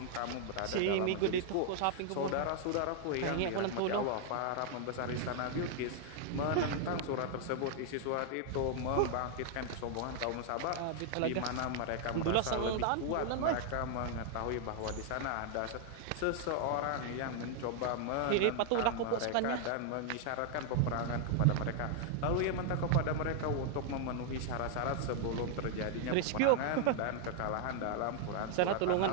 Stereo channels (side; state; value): both; different; correlation 0.00